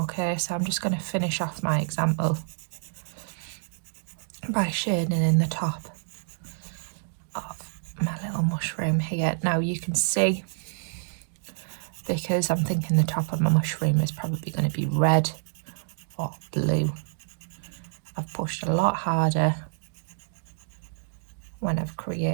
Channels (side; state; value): left; silent; digital silence